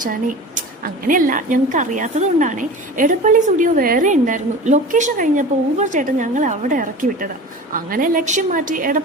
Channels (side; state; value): both; normal; correlation 0.34